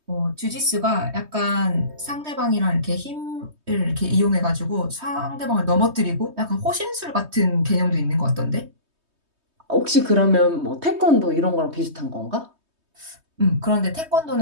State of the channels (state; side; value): late; left; 3.2 ms